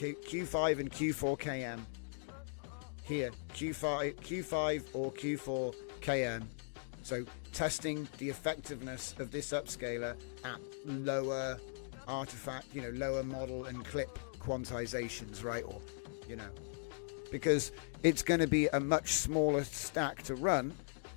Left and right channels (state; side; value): silent; right; digital silence